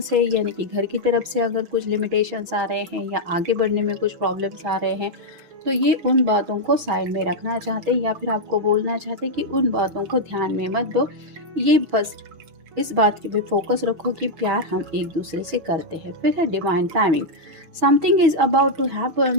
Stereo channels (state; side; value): late; left; 6.2 ms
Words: है यानी कि घर की तरफ से अगर कुछ लिमिटेशंस आ रहे हैं या आगे बढ़ने में कुछ प्रॉब्लम्स आ रहे हैं, तो ये उन बातों को साइड में रखना चाहते हैं या फिर आपको बोलना चाहते हैं कि उन बातों को ध्यान में मत दो। ये बस इस बात की पे फोकस रखो कि प्यार हम एक दूसरे से करते हैं। फिर है divine timing, something is about to